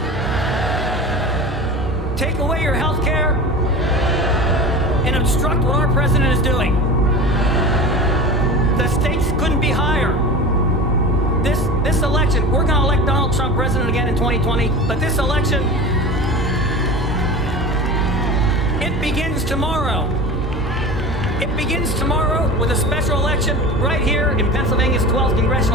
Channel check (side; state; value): both; normal; correlation 0.32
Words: take away your health care, and obstruct what our president is doing. The stakes couldn't be higher. This election, we're going to elect Donald Trump president again in 2020, but this election, it begins tomorrow. It begins tomorrow with a special election right here in Pennsylvania's 12th